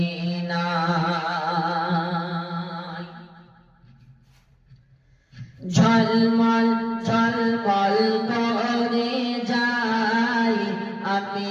ঝলমল ঝলমল করে যাই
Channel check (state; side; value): identical; both; correlation 1.00